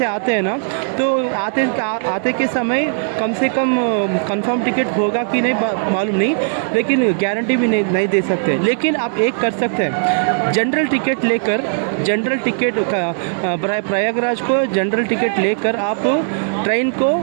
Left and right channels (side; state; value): left; silent; digital silence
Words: आते हैं ना, तो आते के समय कम से कम कंफर्म टिकट होगा कि नहीं मालूम नहीं, लेकिन गारंटी भी नहीं दे सकते। लेकिन आप एक कर सकते हैं, जनरल टिकट लेकर प्रयागराज को जनरल टिकट लेकर आप ट्रेन को